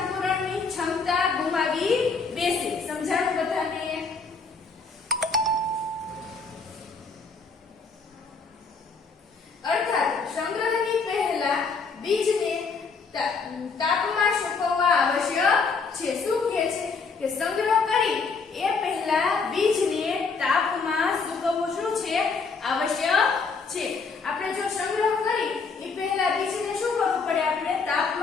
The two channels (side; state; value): right; quieter; 4.8 dB